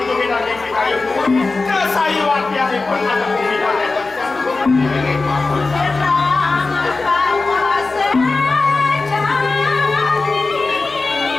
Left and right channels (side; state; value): right; quieter; 3.7 dB